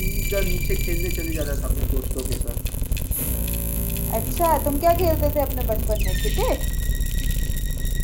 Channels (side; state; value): both; identical; correlation 1.00